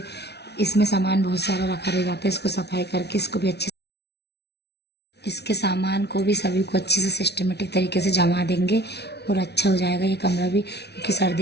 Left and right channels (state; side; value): late; right; 0.49 ms